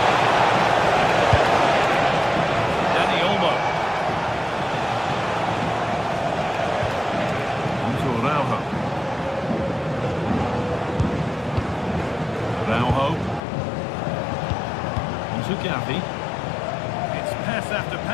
Dani Olmo. Onto Araujo. Araujo. Onto Gavi. It's pass after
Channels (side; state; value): right; drops out; at 13.4 s